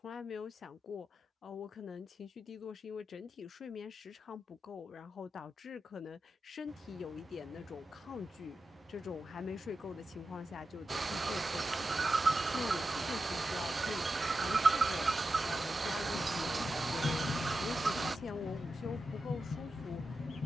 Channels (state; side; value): normal; both; correlation 0.90